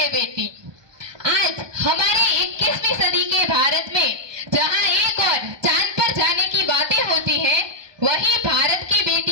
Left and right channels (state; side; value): late; left; 1.2 ms